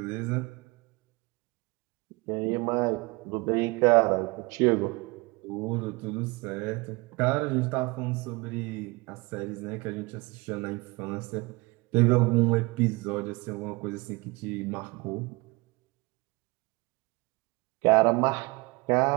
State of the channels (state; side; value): quieter; left; 25.3 dB